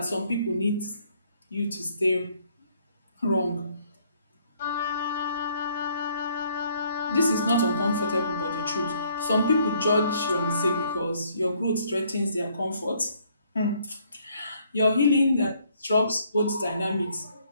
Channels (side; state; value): both; inverted; correlation -0.65